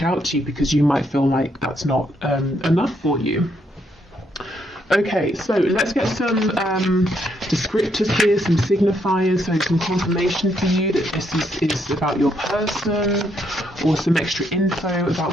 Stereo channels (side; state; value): both; normal; correlation 0.75